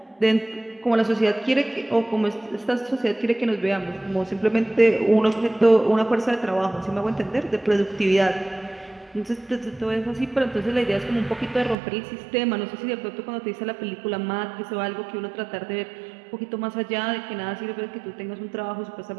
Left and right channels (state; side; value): drops out; left; at 11.8 s